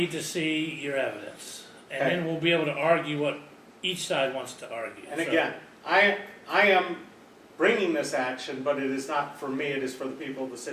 to see your evidence, and Okay. then we'll be able to argue what each side wants to argue. And So- again, I am bringing this action, but it is not for me, it is for the people of the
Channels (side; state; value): both; identical; correlation 1.00